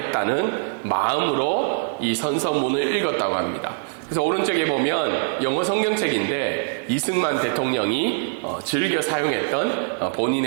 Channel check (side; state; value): left; silent; digital silence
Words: 마음으로 이 선서문을 읽었다고 합니다. 그래서 오른쪽에 보면 영어 성경책인데 이승만 대통령이 즐겨 사용했던